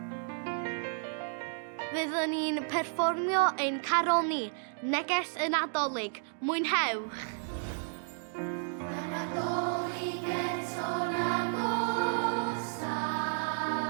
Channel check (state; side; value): silent; left; digital silence